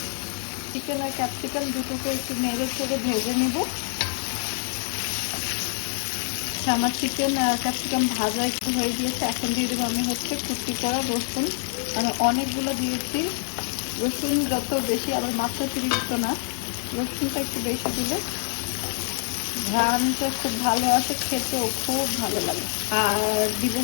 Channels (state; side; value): silent; right; 59 dB below the other